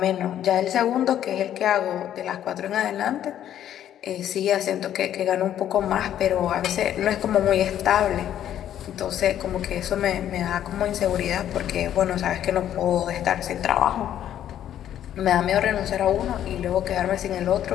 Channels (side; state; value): right; quieter; 10.9 dB